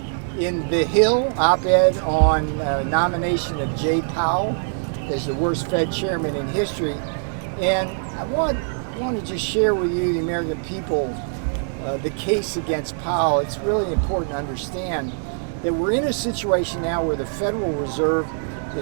in The Hill, op-ed on nomination of Jay Powell as the worst Fed chairman in history. And I want to just share with you, the American people, the case against Powell. It's really important to understand that we're in a situation now where the Federal Reserve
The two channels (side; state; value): left; silent; digital silence